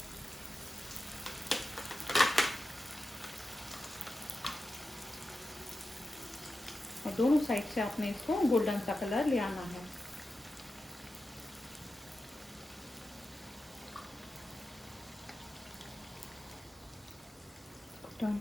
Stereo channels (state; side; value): normal; both; correlation 0.91